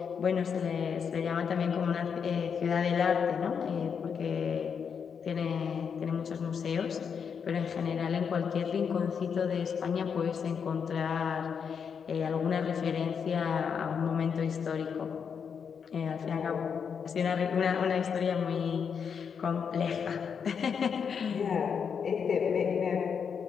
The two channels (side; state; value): right; quieter; 6.7 dB